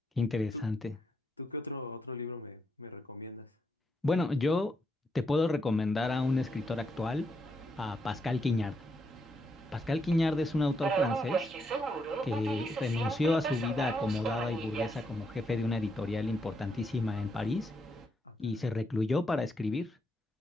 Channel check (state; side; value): normal; both; correlation 0.79